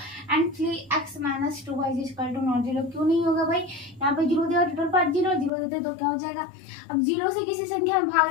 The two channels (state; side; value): drops out; right; at 5.5 s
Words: and 3x - 2y = not 0। क्यों नहीं होगा भाई, यहाँ पे 0 दिया, टोटल पार्ट 0 देते तो क्या हो जाएगा, अब 0 से किसी संख्या में भाग